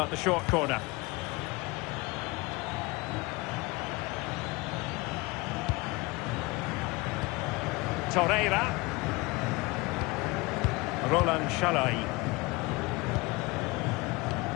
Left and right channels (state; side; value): quieter; right; 23.9 dB